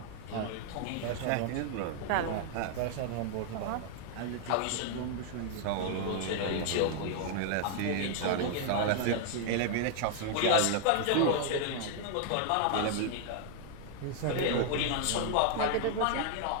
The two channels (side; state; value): both; different; correlation 0.00